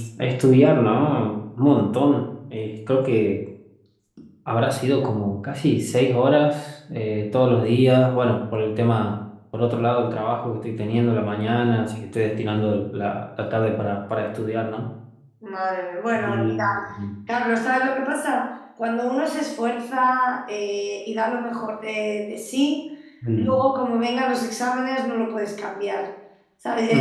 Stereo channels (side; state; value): both; identical; correlation 1.00